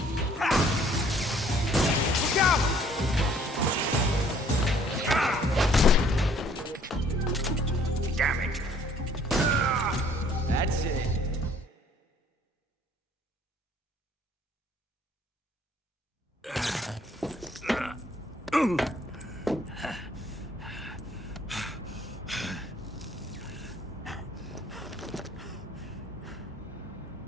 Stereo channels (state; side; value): normal; both; correlation 0.59